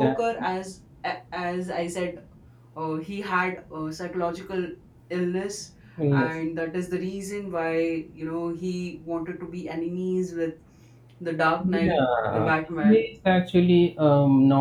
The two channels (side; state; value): both; identical; correlation 1.00